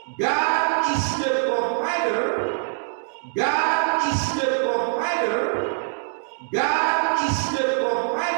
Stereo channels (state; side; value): silent; left; digital silence